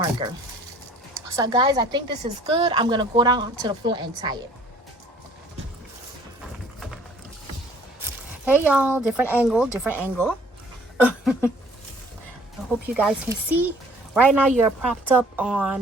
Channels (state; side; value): normal; both; correlation 0.55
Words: So guys, I think this is good. I'm gonna go down to the floor and tie it. Hey y'all, different angle. I hope you guys can see. Right now you're propped up